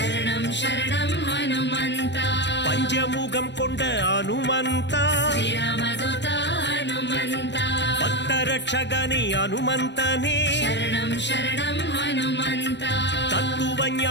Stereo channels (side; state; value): right; late; 0.51 ms